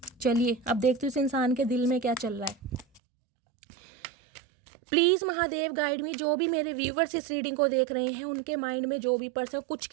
चलिए अब देखते हैं इस इंसान के दिल में क्या चल रहा है। Please Mahadev guide me. जो भी मेरे व्यूवर्स इस रीडिंग को देख रहे हैं, उनके माइंड में जो भी पर्सन, कुछ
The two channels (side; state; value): left; drops out; at 3.0 s